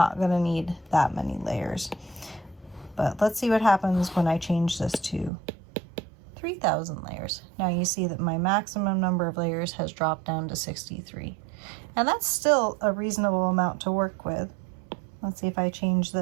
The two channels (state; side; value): drops out; left; at 5.3 s